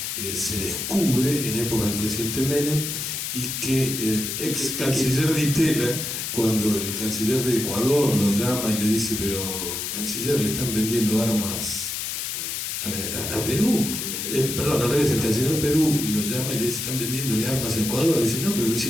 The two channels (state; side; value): noise; left; hiss, 4 dB below the sound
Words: se descubre en época del presidente Menem, y que el ex canciller Di Tella, cuando el canciller de Ecuador lo llama y le dice: pero canciller, le están vendiendo armas a Perú. Perdón, al revés, el canciller de Perú lo llama y le dice: están vendiéndole armas a Ecuador. Dice: no, pero lo